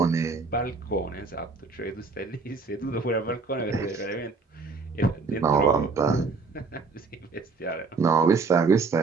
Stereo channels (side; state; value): left; quieter; 4.3 dB